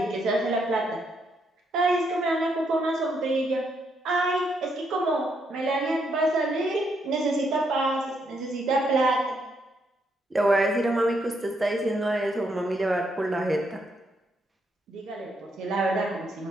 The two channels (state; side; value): normal; both; correlation 0.76